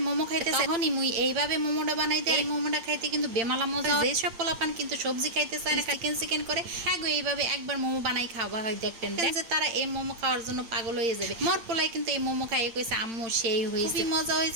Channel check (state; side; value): late; left; 8.8 ms